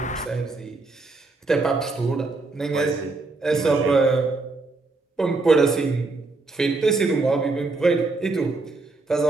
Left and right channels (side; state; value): left; quieter; 3.5 dB